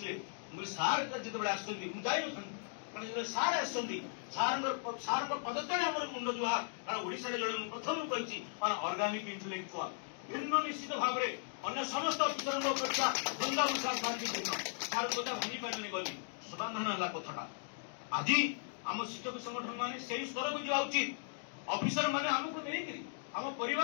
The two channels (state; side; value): silent; right; digital silence